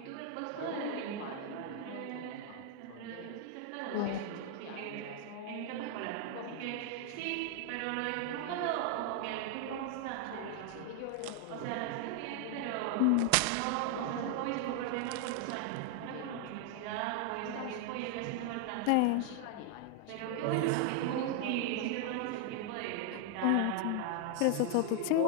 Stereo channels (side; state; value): both; different; correlation 0.00